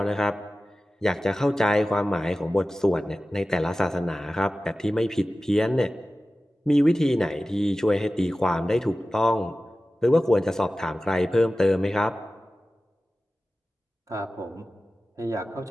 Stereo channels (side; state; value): both; normal; correlation 0.95